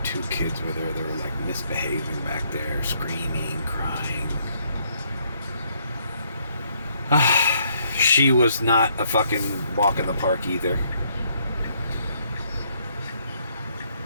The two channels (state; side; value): inverted; both; correlation -0.70